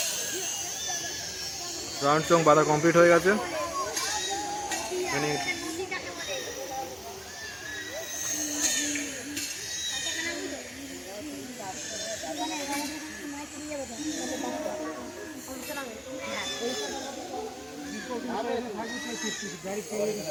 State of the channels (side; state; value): both; identical; correlation 1.00